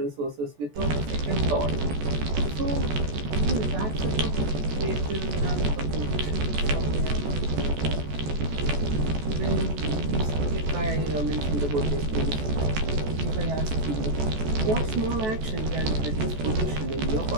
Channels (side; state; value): left; late; 14 ms